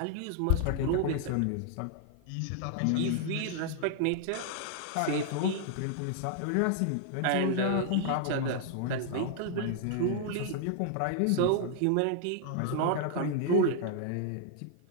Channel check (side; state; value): both; different; correlation -0.01